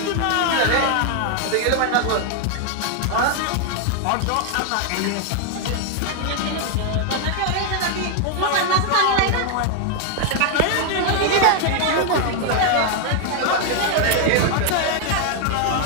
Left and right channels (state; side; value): different; both; correlation 0.00